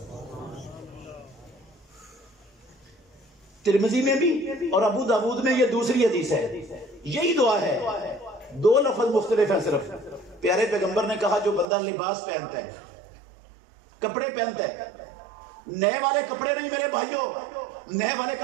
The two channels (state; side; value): drops out; left; at 11.7 s